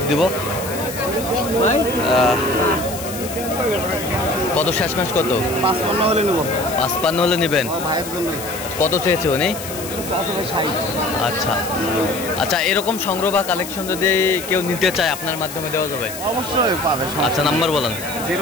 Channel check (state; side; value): noise; left; hiss, 11 dB below the sound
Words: দিব। কত শেষ মাস? কত? 55 হলে নেব। 55 হলে নেবেন? ভাইয়ের জন্য। কত চেয়েছে উনি? আচ্ছা আচ্ছা, এরকম সংগ্রহ বা কালেকশন যদি কেউ নিতে চায় আপনার মাধ্যমে দেওয়া যাবে? অবশ্যই পাবে। আচ্ছা নাম্বার বলেন।